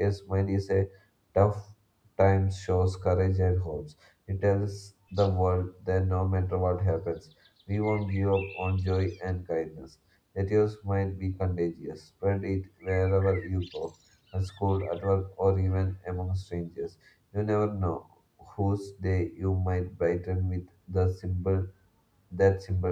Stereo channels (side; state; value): both; identical; correlation 1.00